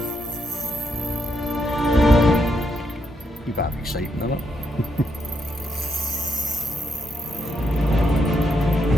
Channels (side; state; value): both; normal; correlation 0.79